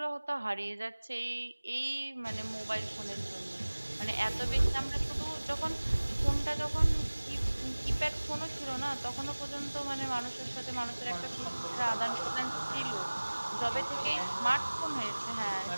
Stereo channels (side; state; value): both; inverted; correlation -1.00